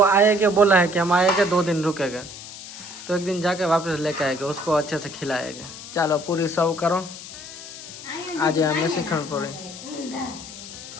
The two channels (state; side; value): noise; left; hiss, 13 dB below the sound